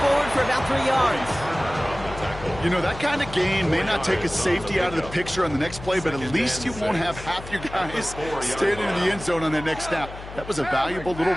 for about 3 yards. You know, that kind of gain may not take a safety out of the picture on the next play, but at least you won't have half your guys standing in the end zone on that next snap. That was a valuable little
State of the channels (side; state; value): left; noise; hum, 13 dB below the sound